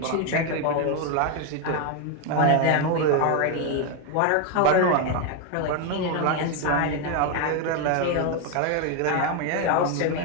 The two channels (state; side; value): different; both; correlation 0.01